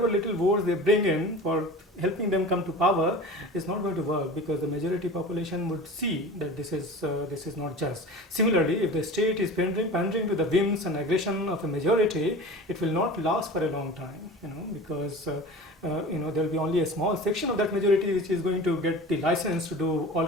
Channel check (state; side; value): normal; both; correlation 0.36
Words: little votes they bring in for helping them come to power, it's not going to work, because the majority population would see that this is not just. Similarly, if the state is pandering to the whims and aggression of a majority, it will not last for a long time, because there will be only a small section of that majority which is going to get the license to do all